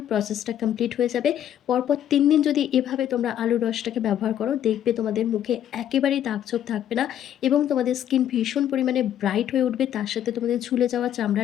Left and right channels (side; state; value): right; quieter; 10.6 dB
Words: প্রসেসটা কমপ্লিট হয়ে যাবে। পরপর ৩ দিন যদি এভাবে তোমরা আলুর রসটাকে ব্যবহার করো, দেখবে তোমাদের মুখে একেবারেই দাগ-ছোপ থাকবে না এবং তোমাদের স্কিন ভীষণ পরিমাণে ব্রাইট হয়ে উঠবে। তার সাথে তোমাদের ঝুলে যাওয়া চামড়া